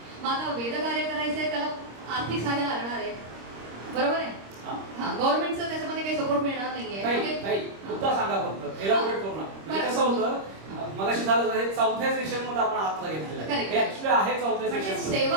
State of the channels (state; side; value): late; left; 26 ms